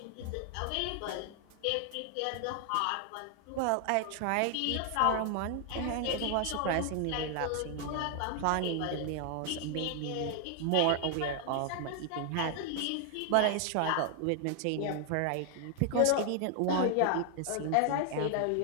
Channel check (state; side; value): different; both; correlation 0.00